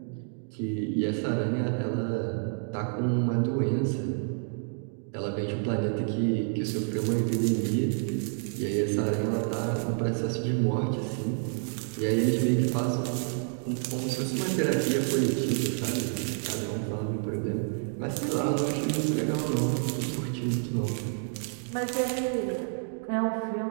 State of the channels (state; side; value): silent; left; 59 dB below the other